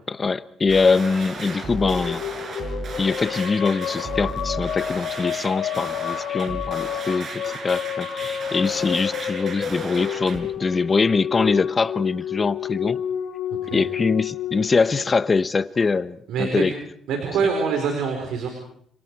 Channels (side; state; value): right; quieter; 3.6 dB